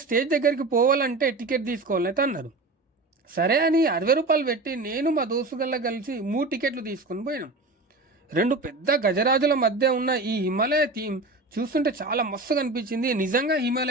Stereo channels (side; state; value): left; quieter; 3.2 dB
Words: స్టేజ్ దగ్గరికి పోవాలంటే టికెట్ తీసుకోవాలని అయితే అన్నారు. సరే అని 60 రూపాయలు పెట్టి నేను మా దోస్తుగల్లా కలిసి 3 టికెట్లు తీసుకొని పోయినాం. 2 పెద్ద గజరాజుల మధ్య ఉన్న ఈ హిమాలయ థీమ్ చూస్తుంటే చాలా మస్తుగా అనిపించింది. నిజంగా